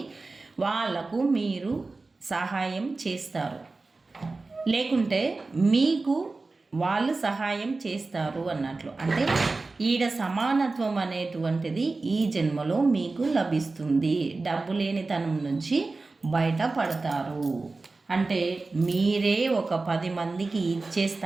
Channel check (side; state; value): left; quieter; 3.6 dB